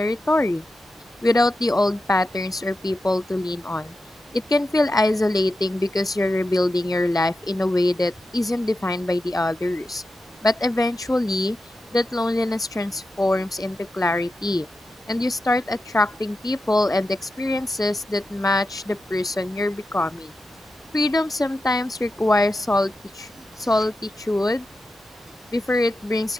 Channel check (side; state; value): both; normal; correlation 0.90